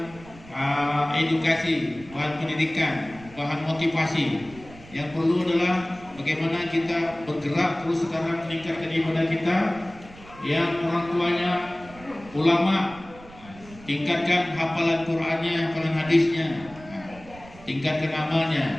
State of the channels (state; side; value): noise; right; rumble, 20 dB below the sound